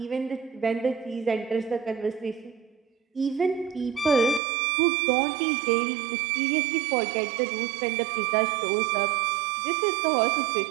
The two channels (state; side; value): drops out; left; at 4.4 s